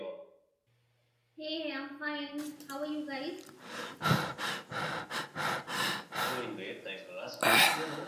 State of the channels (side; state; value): both; identical; correlation 1.00